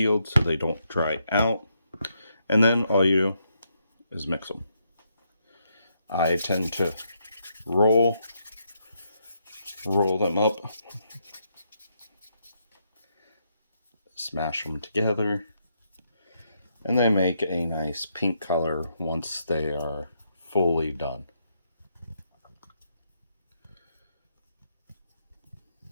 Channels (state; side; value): inverted; both; correlation -0.78